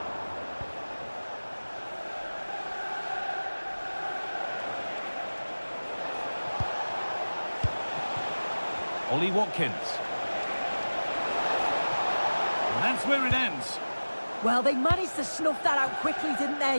Ollie Watkins. And that's where it ends. Well, they managed to snuff that out quickly, didn't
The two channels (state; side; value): inverted; both; correlation -1.00